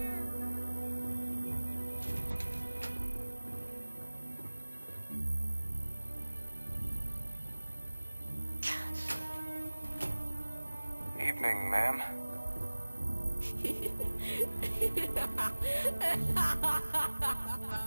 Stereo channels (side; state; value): both; inverted; correlation -1.00